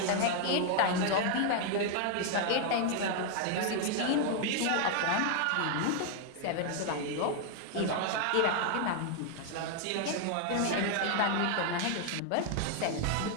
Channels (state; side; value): different; both; correlation 0.00